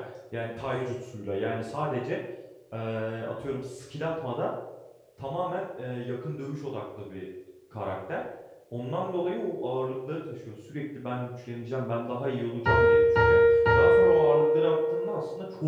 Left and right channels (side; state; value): both; identical; correlation 1.00